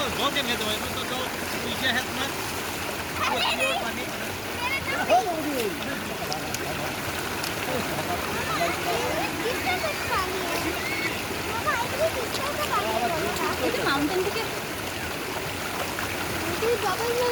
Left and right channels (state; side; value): noise; left; hum, 20 dB below the sound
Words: धो के दो तो जो पीछे है तुम्हें মাউন্টেন থেকে डबल